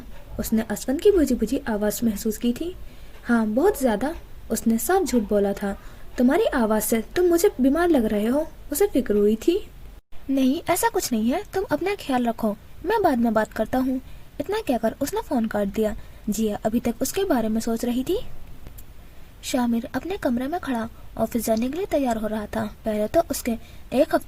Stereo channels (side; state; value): both; identical; correlation 1.00